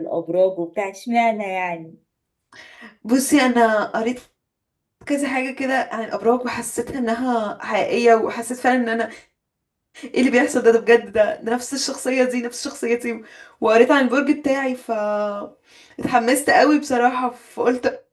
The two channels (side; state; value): both; identical; correlation 1.00